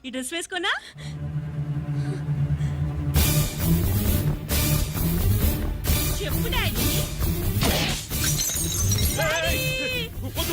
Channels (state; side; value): identical; both; correlation 1.00